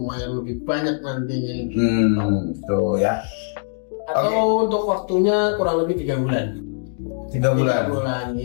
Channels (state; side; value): silent; right; digital silence